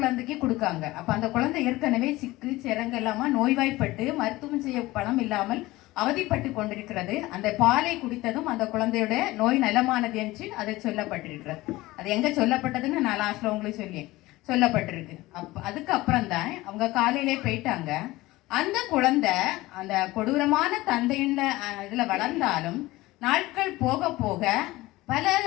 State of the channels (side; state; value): right; quieter; 18.9 dB